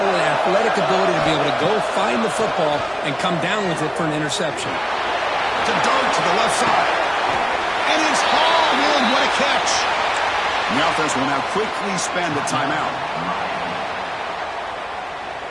an athletic ability to be able to go find the football and come down with it for an interception. To dart to the left side. And it's hauled in. What a catch. And the offense will now quickly spend a timeout.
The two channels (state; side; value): identical; both; correlation 1.00